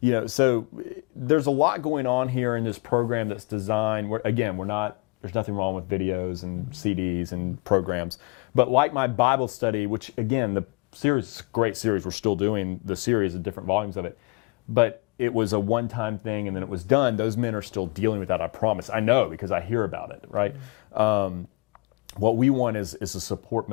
in. So there's a lot going on here in this program that's designed. There's nothing wrong with videos and CDs and programs, but like my Bible study, which again, the series, great series, we're still doing the series of different volumes of it, but it was a one-time thing and then it was done. Those men are still dealing with that, I promise. I know because I hear about it, right? What we want is a support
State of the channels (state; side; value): quieter; right; 27.9 dB